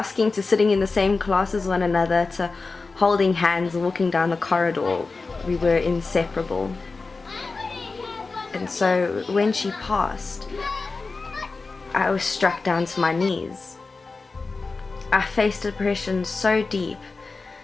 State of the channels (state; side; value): quieter; right; 4.0 dB